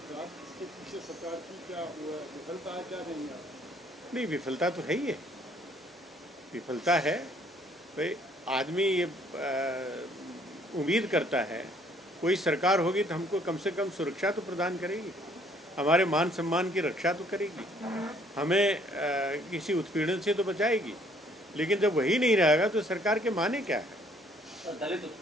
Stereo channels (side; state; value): both; normal; correlation 0.62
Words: इसके पीछे सरकार की क्या विफलता है, क्या नहीं है? नहीं, विफलता तो है ही है, विफलता है। भाई आदमी ये उम्मीद करता है कोई सरकार होगी तो हमको कम से कम सुरक्षा तो प्रदान करेगी, हमारे मान सम्मान की रक्षा तो करेगी, हमें किसी उत्पीड़न से तो बचाएगी। लेकिन जब वही नहीं रहेगा तो सरकार के माने क्या है? दलित